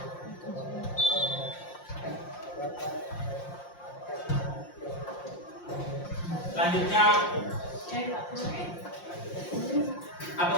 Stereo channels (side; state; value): right; late; 5.7 ms